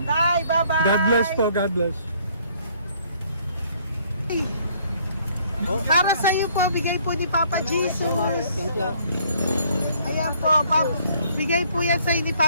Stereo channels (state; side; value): inverted; both; correlation -0.63